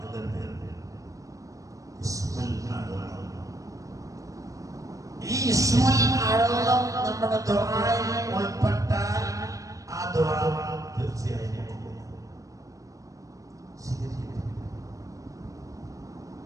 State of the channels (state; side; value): late; left; 0.16 ms